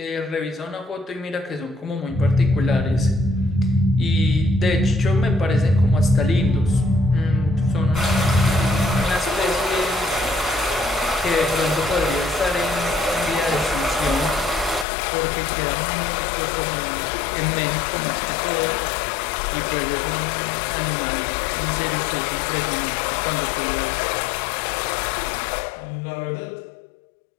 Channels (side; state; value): right; drops out; at 14.9 s